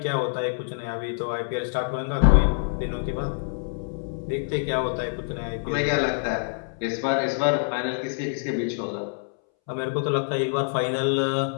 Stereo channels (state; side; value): silent; right; 61 dB below the other